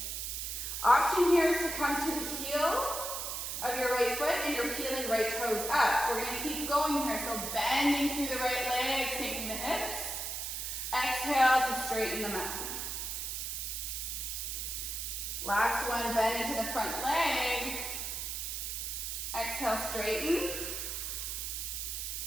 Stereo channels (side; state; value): right; noise; hiss, 4 dB below the sound